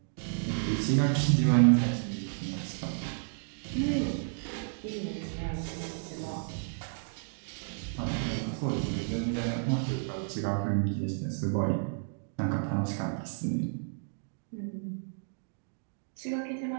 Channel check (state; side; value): silent; left; digital silence